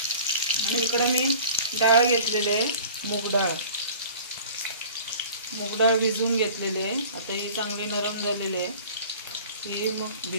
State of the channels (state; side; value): inverted; both; correlation -0.44